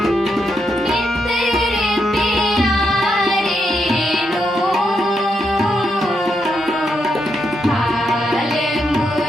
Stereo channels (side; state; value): both; normal; correlation 0.81